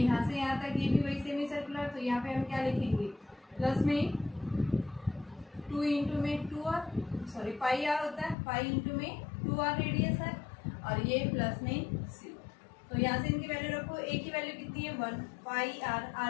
से यहाँ तक, ये भी वही सेमी सर्कुलर। तो यहाँ पे हम क्या लिखेंगे, प्लस में 2 इंटू में 2r, सॉरी पाई आर होता है, पाई इंटू में 2r रेडियस है, और ये प्लस में c। तो यहाँ से इनकी वैल्यू रखो। a की वैल्यू कितनी है 1, पाई आर,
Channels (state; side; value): drops out; right; at 8.3 s